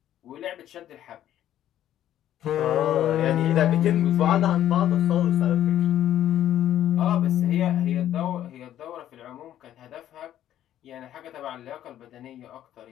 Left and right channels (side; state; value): right; quieter; 11.7 dB